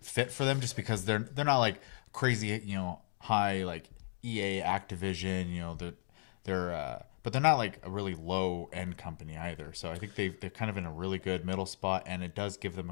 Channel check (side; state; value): right; silent; digital silence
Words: fit for them, just because they're not like crazy, high like EA, Activision, but they're not like a really low end company either. So I think they're kind of in a really good middle spot, and it does give them